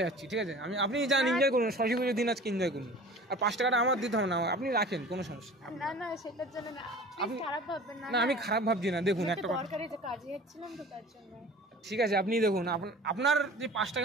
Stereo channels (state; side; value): normal; both; correlation 0.42